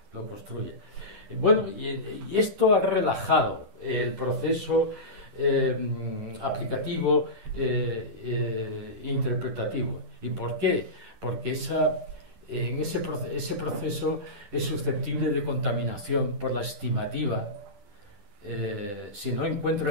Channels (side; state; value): left; late; 10 ms